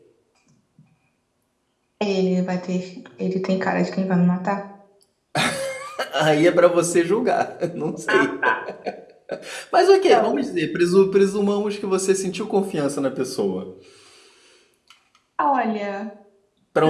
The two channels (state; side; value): identical; both; correlation 1.00